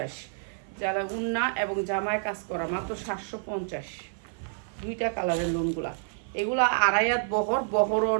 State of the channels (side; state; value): left; silent; 55 dB below the other